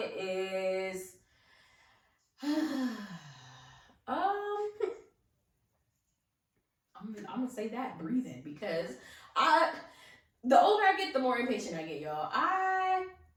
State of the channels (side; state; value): both; identical; correlation 1.00